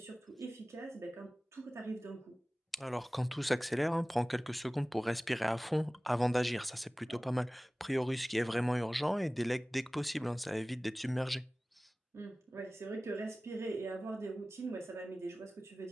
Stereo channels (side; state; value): both; normal; correlation 0.98